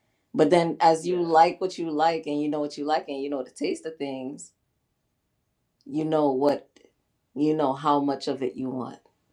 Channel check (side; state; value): both; identical; correlation 1.00